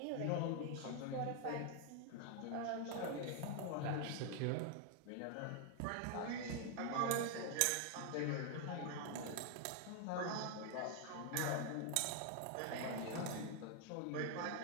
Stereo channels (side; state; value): both; different; correlation 0.00